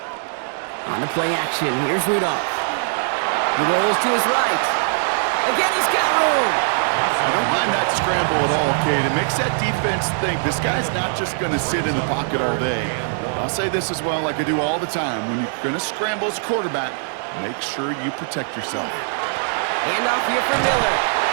On the play action, here's Rudolph. He rolls to his right. Again, he's got room. I don't mind that scramble at all, Kate. It makes that defense think this guy's not just going to sit in the pocket all day. I'll say this as well, like I do all the time. When you're going to scramble as a quarterback, make sure you protect yourself. Handoff here for Miller.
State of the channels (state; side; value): silent; left; digital silence